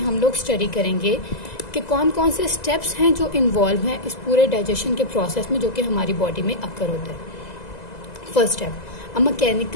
हम लोग स्टडी करेंगे कि कौन कौन से स्टेप्स हैं जो इन्वॉल्व हैं इस पूरे डाइजेशन के प्रोसेस में, जो कि हमारी बॉडी में अकर होता है. First step, a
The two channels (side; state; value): right; late; 2.0 ms